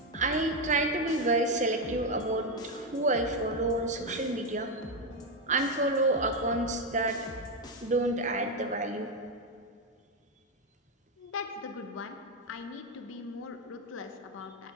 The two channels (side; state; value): both; normal; correlation 0.07